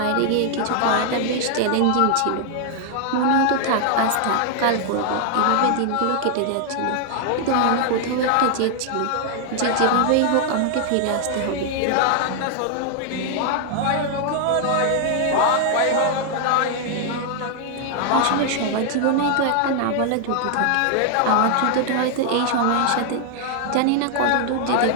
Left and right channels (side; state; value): both; different; correlation 0.00